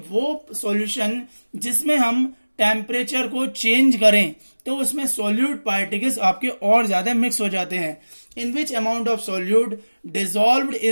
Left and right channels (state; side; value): inverted; both; correlation -1.00